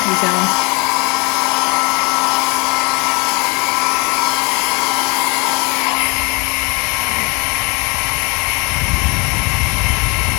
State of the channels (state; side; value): quieter; right; 30.0 dB